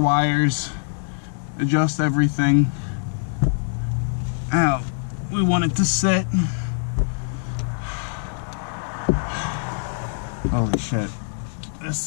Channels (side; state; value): right; silent; 63 dB below the other